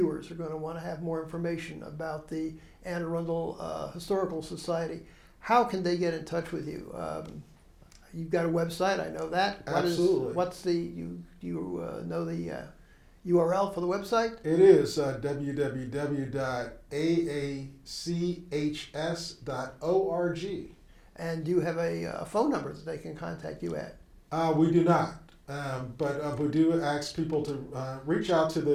are going to want to have more information about the Anne Arundel Historical Society. How can they get in touch with you? You've got a website, I know that. Absolutely. What's the know the URL for the website? It is www.aachs.org. And do you have a phone number that they can contact you at? We do not, but we do ask people to reach out to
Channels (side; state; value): both; identical; correlation 1.00